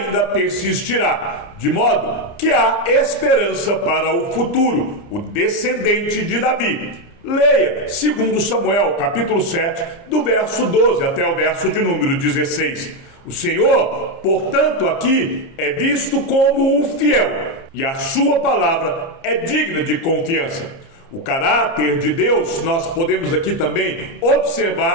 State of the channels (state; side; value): late; right; 30 ms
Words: persistirá, de modo que há esperança para o futuro, o descendente de Davi. Leia 2 Samuel, capítulo 7, do verso 12 até o verso de número 16. O Senhor, portanto, aqui é visto como o fiel, e a sua palavra é digna de confiança. O caráter de Deus, nós podemos aqui também